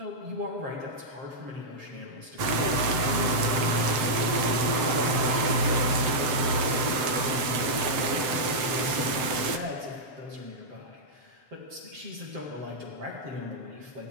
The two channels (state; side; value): late; left; 7.7 ms